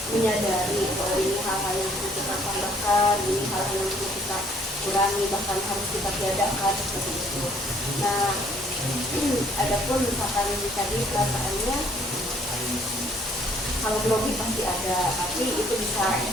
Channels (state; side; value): normal; both; correlation 0.62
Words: menyadari bahwa ini hal-hal yang perlu kita tambahkan, ini hal-hal yang perlu kita kurangi, bahkan harus kita tiadakan seperti itu. Nah, adapun misalkan tadi perasaannya, kalau grogi pasti ada, tapi itu bisa